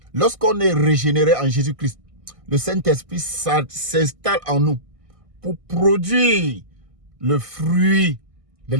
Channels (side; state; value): left; late; 1.6 ms